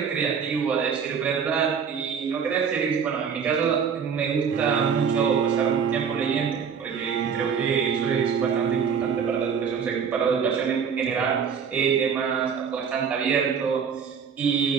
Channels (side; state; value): left; quieter; 6.8 dB